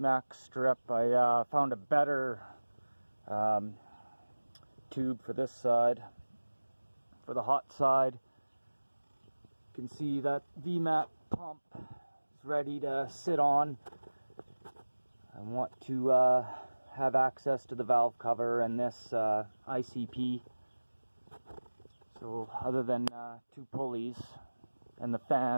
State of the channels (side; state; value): both; inverted; correlation -1.00